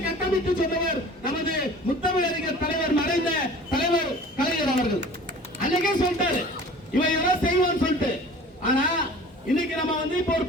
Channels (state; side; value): normal; both; correlation 0.44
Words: கட்டமைத்து சொன்னவர் நமது முத்தமிழ் அறிஞர் தலைவர், மறைந்த தலைவர் கலைஞர் அவர்கள். அன்னைக்கே சொல்லிட்டாரு இவன் எல்லாம் செய்வான்னு சொல்லிட்டு. ஆனா இன்னைக்கு நம்ம வந்து இப்ப ஒரு